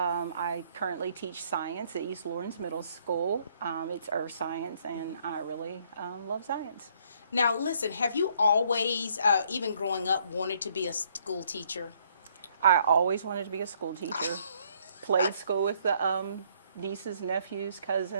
currently teach science at East Lawrence Middle School. It's earth science, and I really love science. Now, listen, have you always, even growing up, wanted to be a school teacher? I always wanted to be a school teacher. Played school with the nieces, nephews,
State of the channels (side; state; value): both; inverted; correlation -0.66